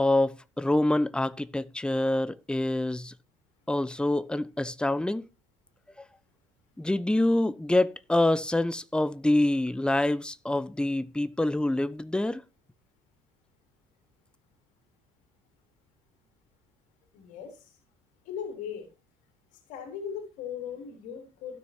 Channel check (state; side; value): normal; both; correlation 0.96